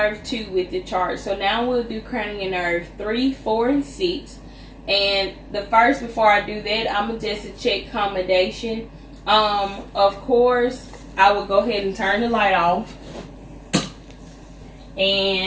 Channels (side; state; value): both; identical; correlation 1.00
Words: 2 with the chart. So now we'll do cranial nerve 3, 4, and 6. And before I do that, I'm gonna just check accommodation. Of course, I will go ahead and turn the light off.